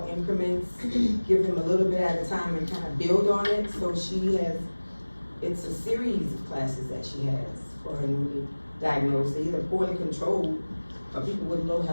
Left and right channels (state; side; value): inverted; both; correlation -1.00